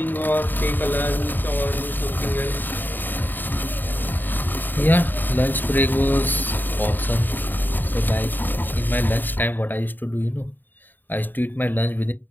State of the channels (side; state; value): right; late; 0.091 ms